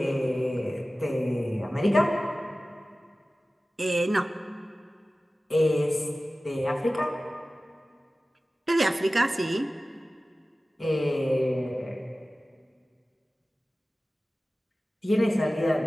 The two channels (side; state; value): both; normal; correlation 0.96